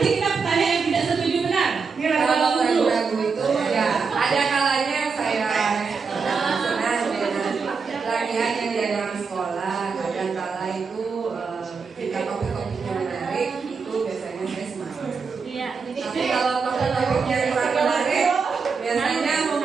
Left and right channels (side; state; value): left; quieter; 5.2 dB